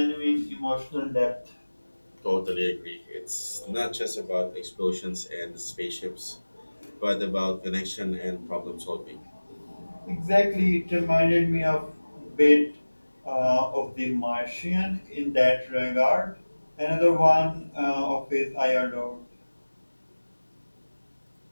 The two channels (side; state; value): both; inverted; correlation -1.00